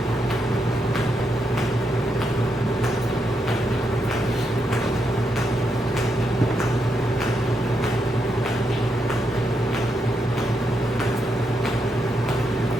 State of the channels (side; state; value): both; normal; correlation 0.82